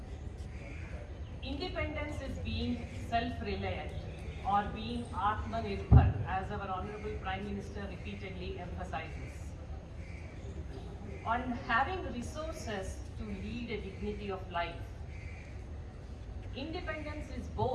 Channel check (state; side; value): identical; both; correlation 1.00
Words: independence is being self-reliant or being Atmanirbhar, as our Honorable Prime Minister repeatedly emphasizes. On having resources to lead a dignity of life. Independence is